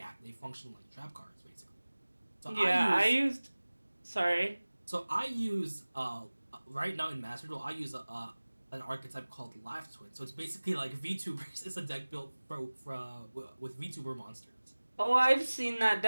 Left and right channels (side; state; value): both; inverted; correlation -1.00